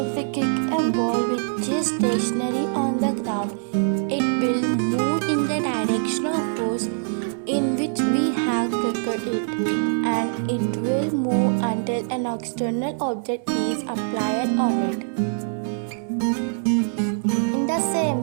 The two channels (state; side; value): silent; left; digital silence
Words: we kick a ball which is stationary on the ground, it will move in the direction of force in which we have kicked it, and it will move until an external object is applied on it. In the same